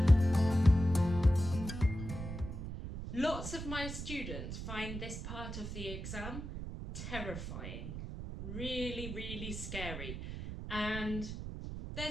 Lots of my students find this part of the exam terrifying, really scary, and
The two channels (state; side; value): noise; right; rumble, 7 dB below the sound